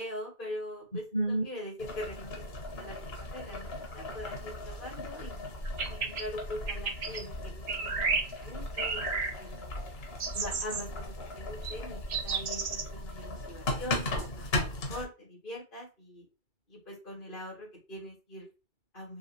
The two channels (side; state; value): right; late; 2.3 ms